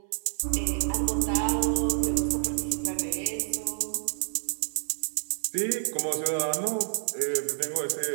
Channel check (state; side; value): silent; left; 58 dB below the other